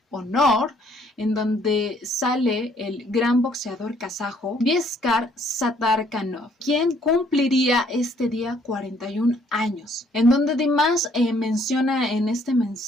honor, en donde sale el gran boxeador kazajo Vieskar Satarkanov, quien cumpliría este día 41 años, en donde Dimash menciona en este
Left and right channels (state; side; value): normal; both; correlation 0.64